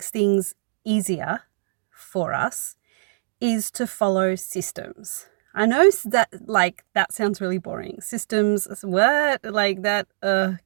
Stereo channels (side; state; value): left; silent; digital silence